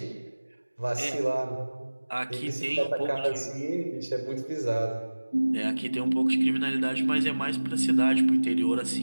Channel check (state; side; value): inverted; both; correlation -1.00